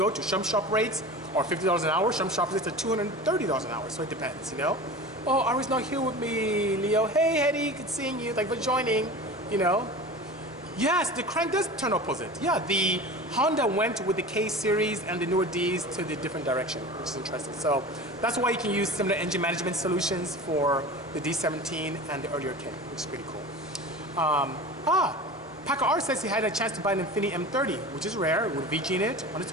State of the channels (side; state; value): both; normal; correlation 0.34